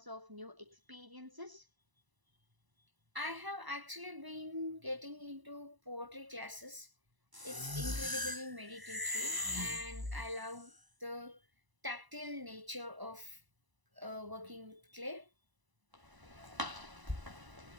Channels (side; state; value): left; late; 1.0 ms